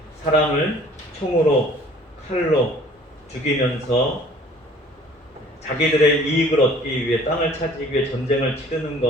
사람을 총으로 칼로 죽이면서 자기들의 이익을 얻기 위해 땅을 차지하기 위해 전쟁을 치르는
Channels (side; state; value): both; normal; correlation 0.52